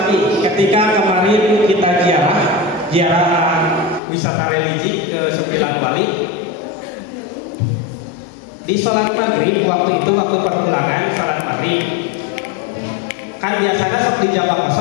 Ketika kemarin kita ziarah wisata religi ke 9 Wali. Di sholat maghrib waktu itu, waktu perpulangan sholat maghrib, kan biasanya sok di jamaah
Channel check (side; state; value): right; drops out; at 4.0 s